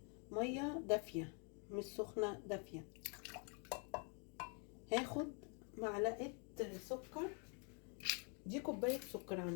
مية دافية، مش سخنة، دافية. هاخد معلقة سكر، دي كوباية سكر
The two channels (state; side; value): quieter; right; 38.4 dB